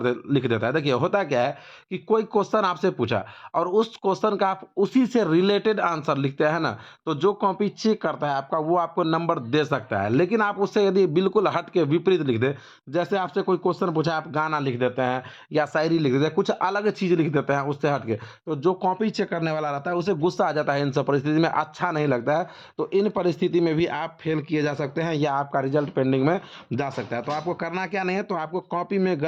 लिख देता है। देखिए होता क्या है कि कोई क्वेश्चन आपसे पूछा और उस क्वेश्चन का आप उसी से रिलेटेड आंसर लिखते हैं ना, तो जो कॉपी चेक करता है आपका, वो आपको नंबर दे सकता है। लेकिन आप उससे यदि बिल्कुल हट के विपरीत लिख दें, जैसे आपसे कोई क्वेश्चन पूछा, आप गाना लिख देते हैं या शायरी लिख देते हैं, कुछ अलग चीज़ लिख देते हैं उससे हट के, तो जो कॉपी चेक करने वाला रहता है, उसे गुस्सा आ जाता है। इन सब परिस्थिति में अच्छा नहीं लगता है। तो इन परिस्थिति में भी आप फेल किए जा सकते हैं या आपका रिजल्ट पेंडिंग में जा सकता है। तो आपको करना क्या नहीं है, तो आपको कॉपी में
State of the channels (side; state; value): both; identical; correlation 1.00